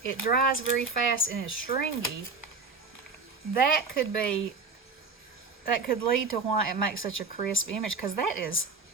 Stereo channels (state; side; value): quieter; left; 4.3 dB